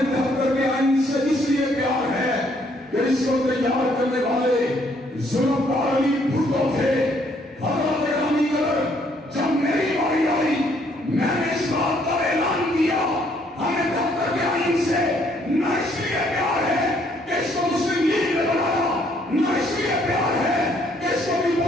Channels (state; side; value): normal; both; correlation 0.67